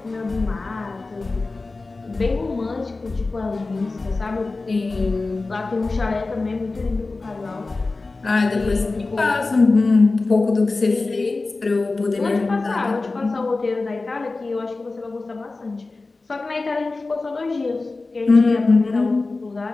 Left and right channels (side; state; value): right; quieter; 3.5 dB